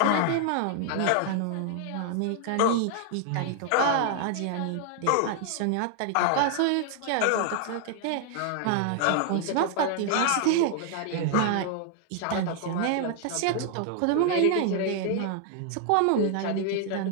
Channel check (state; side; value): different; both; correlation 0.00